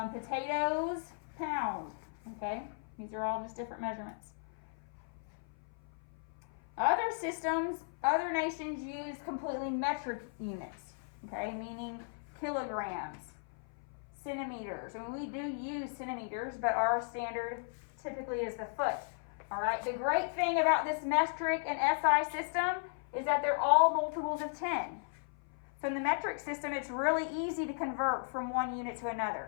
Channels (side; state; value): right; silent; 54 dB below the other